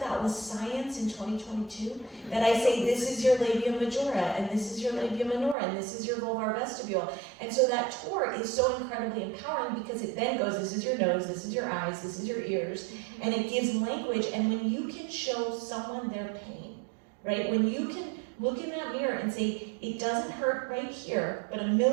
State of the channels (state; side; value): drops out; left; at 5.6 s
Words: was science in 2022, that I say, this is your labia majora, and this is your labia minora, and this is your vulvar vestibule. And so that tour is so incredibly empowering, because it then goes, this is your nose, this is your eyes, this is your ears, and it gives language. And when you can show someone their pain, right? When you can look in that mirror and say, it doesn't hurt right here, but a